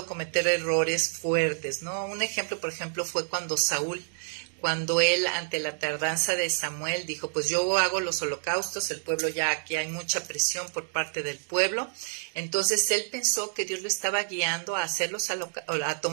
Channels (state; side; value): silent; left; digital silence